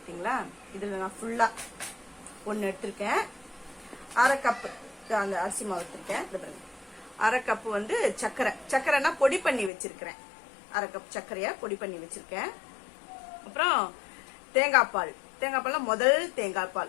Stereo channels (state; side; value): drops out; right; at 9.7 s